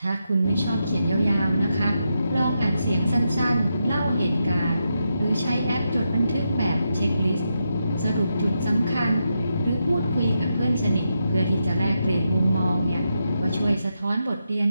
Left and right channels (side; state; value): both; inverted; correlation -0.85